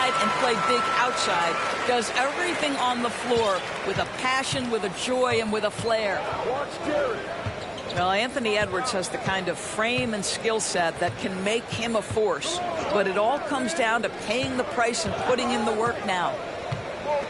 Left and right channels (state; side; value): identical; both; correlation 1.00